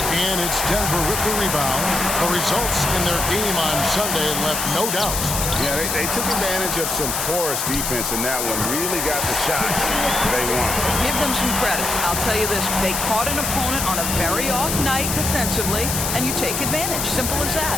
and it's Denver with the rebound. The results in their game on Sunday left no doubt. Yeah, they took advantage of some porous defense in that one. Really got the shots they wanted. Give them some credit. I'll tell you this. They caught an opponent on a very off night defensively, and you take advantage. Simple as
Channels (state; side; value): noise; left; hiss, 1 dB below the sound